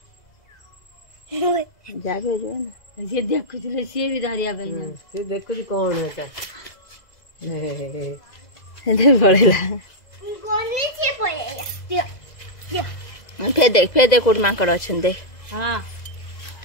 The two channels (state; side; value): late; right; 2.0 ms